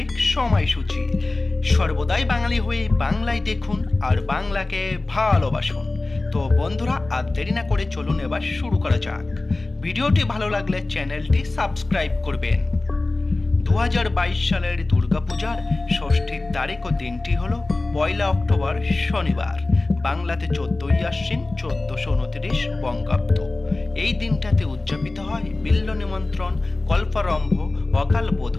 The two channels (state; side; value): quieter; right; 3.1 dB